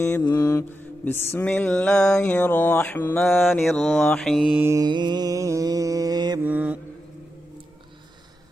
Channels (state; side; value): normal; both; correlation 0.88